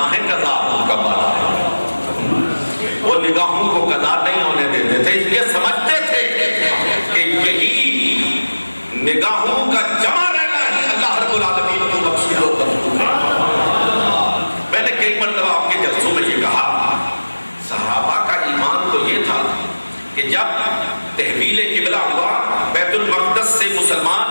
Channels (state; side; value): inverted; both; correlation -1.00